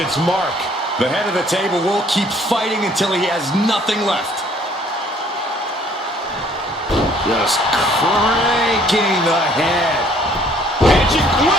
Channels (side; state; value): both; normal; correlation 0.59